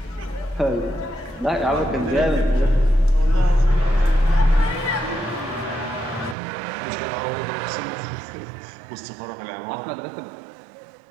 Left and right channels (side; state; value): left; drops out; at 6.4 s